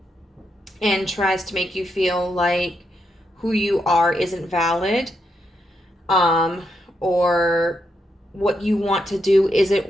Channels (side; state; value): both; normal; correlation 0.81